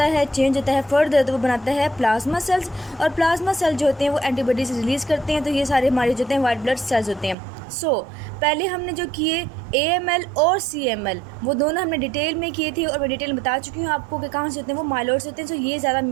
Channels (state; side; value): drops out; left; at 7.4 s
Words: है, चेंज होता है फर्दर, तो वो बनाता है प्लाज्मा सेल्स। और प्लाज्मा सेल जो होते हैं वो एंटीबॉडीज रिलीज़ करते हैं। तो ये सारे हमारे जो होते हैं वाइट ब्लड सेल्स होते हैं। पहले हमने जो किए AML और CML वो दोनों हमने डिटेल में किए थे और मैं डिटेल में बता चुकी हूँ आपको कि कहाँ से होते हैं, वो माइलॉइड से होते हैं। ये ज़्यादा